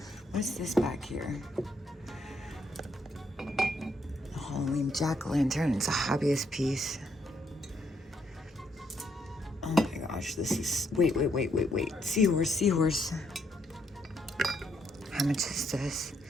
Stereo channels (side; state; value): both; normal; correlation 0.74